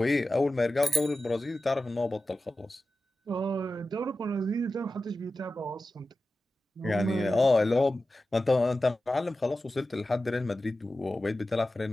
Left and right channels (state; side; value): normal; both; correlation 0.94